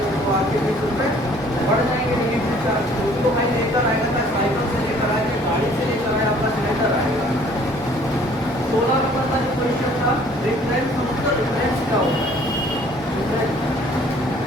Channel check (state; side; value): noise; left; hum, 26 dB below the sound